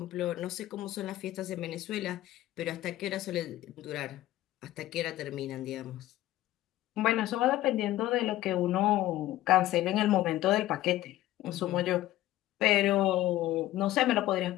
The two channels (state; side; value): quieter; right; 15.1 dB